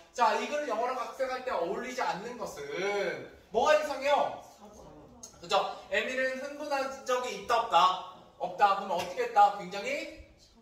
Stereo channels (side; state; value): both; identical; correlation 1.00